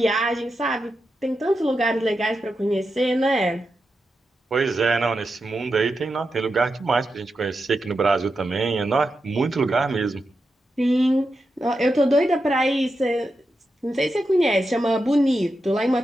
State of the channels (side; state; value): both; normal; correlation 0.88